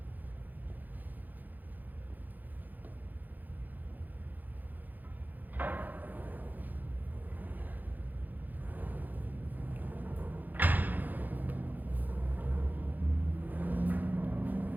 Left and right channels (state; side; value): late; left; 0.084 ms